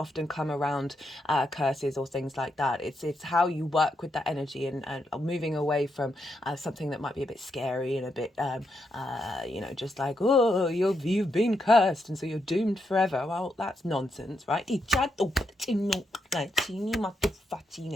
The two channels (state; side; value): normal; both; correlation 0.81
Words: come around curses or things like that. It's how you work with that energy and moving away from something that might be a bit scary and a bit just like, oh, you've been cursed and so you're doomed forever. Well, that's nonsense, right? It's